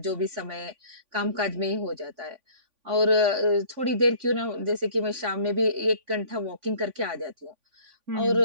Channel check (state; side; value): late; left; 3.5 ms